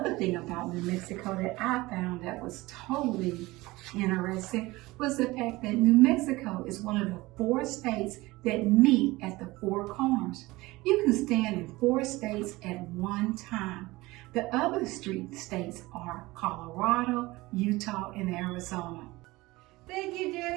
thing about New Mexico that I found that was totally interesting was the fact that New Mexico is one of the 4 states that meet at the 4 corners. You can stand in 4 states at one time. The other states are Colorado, Utah, and Arizona. Thank you,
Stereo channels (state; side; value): quieter; left; 20.4 dB